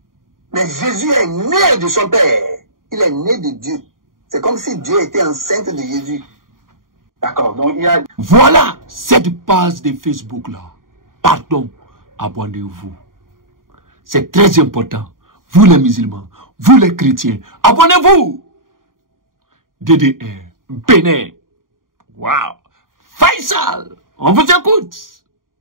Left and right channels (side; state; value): left; late; 0.90 ms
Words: Mais Jésus est né de son Père. Il est né de Dieu. C'est comme si Dieu était enceinte de Jésus. D'accord, donc il y a... Voilà cette page de Facebook là. Pardon, abonnez-vous. C'est très important. Vous les musulmans, vous les chrétiens, abonnez-vous. DDR, Bénin. Waouh. Faisal, on vous écoute.